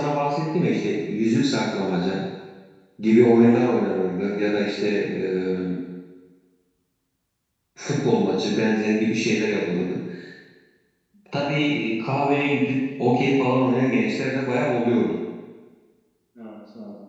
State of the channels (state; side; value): identical; both; correlation 1.00